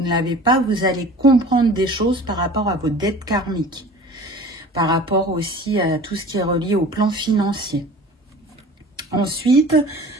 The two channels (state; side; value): normal; both; correlation 0.42